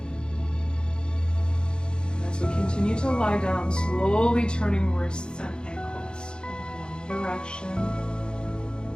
And as we continue to lie down, slowly turning wrists and ankles in one direction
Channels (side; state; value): right; late; 0.049 ms